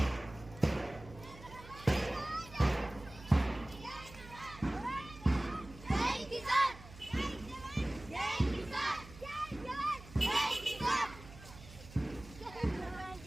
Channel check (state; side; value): noise; right; hum, 17 dB below the sound